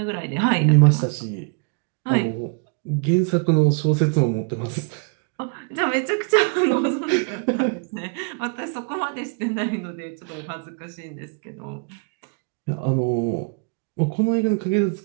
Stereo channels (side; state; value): left; quieter; 37.8 dB